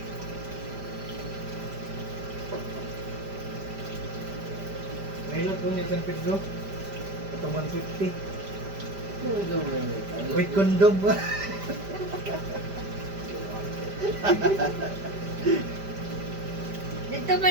Mahilot po niya San Pedro. Ito 150. Ano Wait, kondom ba? Dito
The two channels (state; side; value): late; left; 5.0 ms